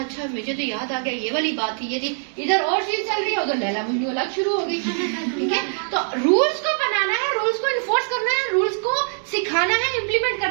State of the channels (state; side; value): silent; left; digital silence